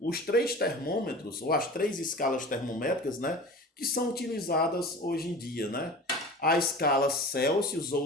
três termômetros, ou as três escalas termométricas, né, que são utilizadas hoje em dia, né? A escala Celsius ou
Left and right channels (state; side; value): normal; both; correlation 0.37